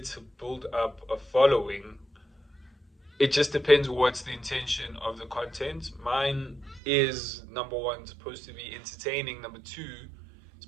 build up a following. It just depends what's the intention of the content. Mine is, number one, supposed to be entertaining. Number two,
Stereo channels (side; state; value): left; drops out; at 6.8 s